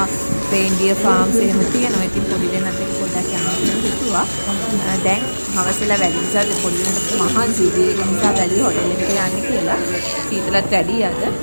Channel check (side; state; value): both; inverted; correlation -1.00